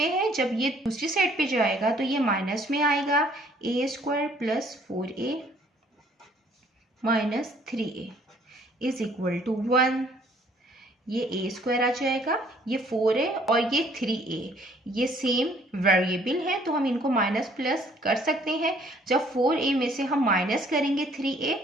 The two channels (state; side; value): normal; both; correlation 0.60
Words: है, जब ये दूसरी साइड पे जाएगा तो ये माइनस में आएगा, a² + 4a - 3a is equal to 1। ये a² आ जाएगा, ये 4 है और ये 3a, ये सेम वेरिएबल है तो हम इनको माइनस प्लस कर सकते हैं। जब 4a में से हम माइनस करेंगे 3a